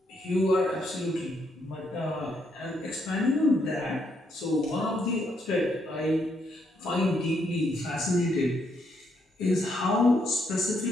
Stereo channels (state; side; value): normal; both; correlation 0.75